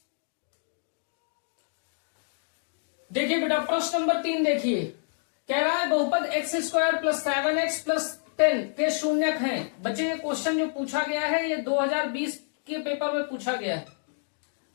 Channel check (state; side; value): silent; right; digital silence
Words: देखिए बेटा प्रश्न नंबर 3 देखिए, कह रहा है बहुपद x² प्लस 7x प्लस 10 के शून्यक हैं। बच्चे ये क्वेश्चन जो पूछा गया है ये 2020 के पेपर में पूछा गया है।